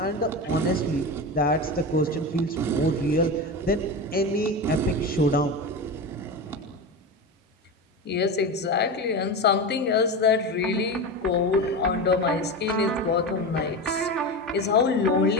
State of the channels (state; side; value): normal; both; correlation 0.23